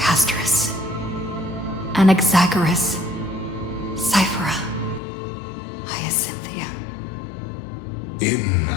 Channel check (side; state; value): right; drops out; at 5.0 s